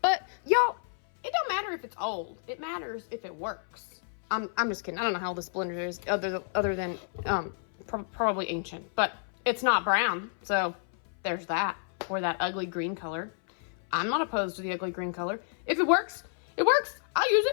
y'all, it don't matter if it's old. It matters if it works. I'm just kidding. I don't know how this blender is other than probably ancient, but it's not brown. So there's that, or that ugly green color. I'm not opposed to the ugly green color. If it works, it works. I'll use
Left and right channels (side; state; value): right; silent; 58 dB below the other